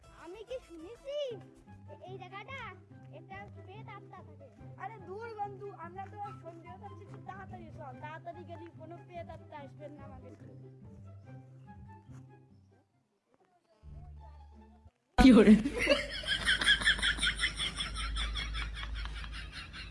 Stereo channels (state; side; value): identical; both; correlation 1.00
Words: আমি কি শুনেছি এই জায়গাটা একটা প্রেত আত্মা থাকে। আরে দূর বন্ধু, আমরা তো সন্ধ্যা হচ্ছে, একটু তাড়াতাড়ি চল, তাড়াতাড়ি গেলি কোনো পেয়ে তাড়াতাড়ি আসবেন না আমাদের। কি করে